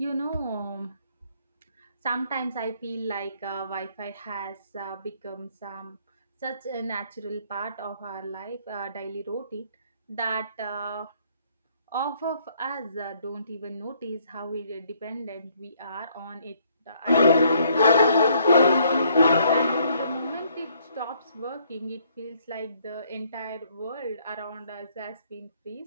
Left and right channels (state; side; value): inverted; both; correlation -0.67